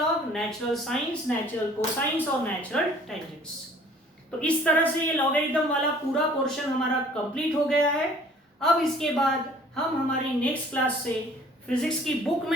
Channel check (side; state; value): both; normal; correlation 0.53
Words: natural science, natural cosines और नेचुरल टेंजेंट्स। तो इस तरह से ये लॉगरिथम वाला पूरा पोर्शन हमारा कंप्लीट हो गया है। अब इसके बाद हम हमारी नेक्स्ट क्लास से फिजिक्स की बुक